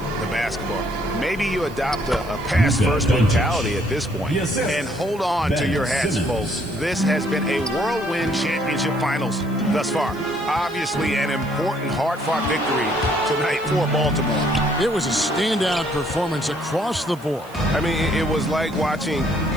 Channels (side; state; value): right; noise; hiss, 24 dB below the sound